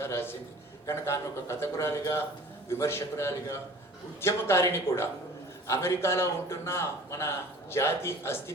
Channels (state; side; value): normal; both; correlation 0.45